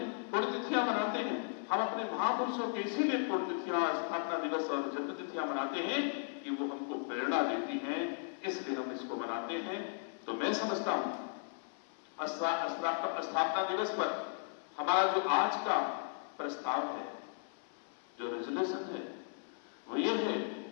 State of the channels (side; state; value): right; silent; 54 dB below the other